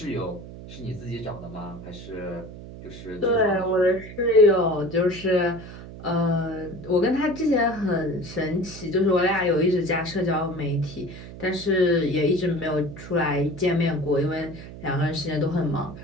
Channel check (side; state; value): right; noise; hum, 14 dB below the sound